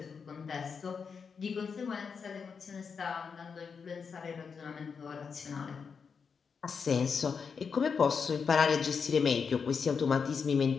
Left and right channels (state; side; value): quieter; right; 5.9 dB